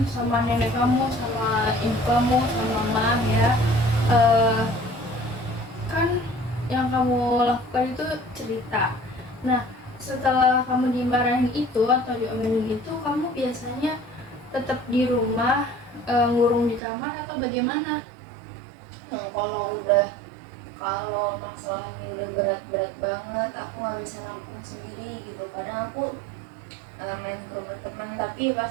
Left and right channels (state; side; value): drops out; left; at 16.8 s